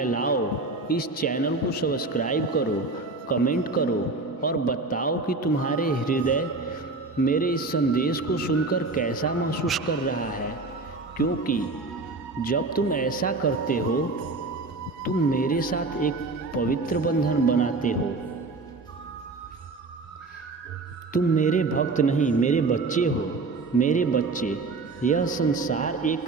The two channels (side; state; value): left; quieter; 3.6 dB